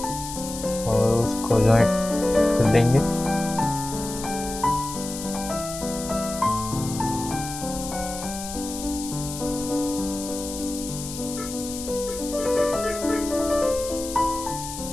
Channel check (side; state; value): left; noise; hiss, 9 dB below the sound